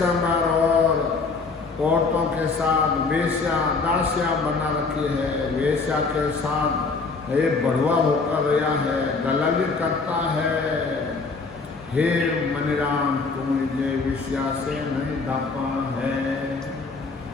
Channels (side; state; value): right; quieter; 4.2 dB